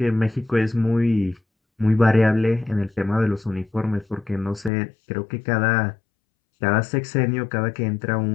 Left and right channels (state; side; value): drops out; right; at 4.7 s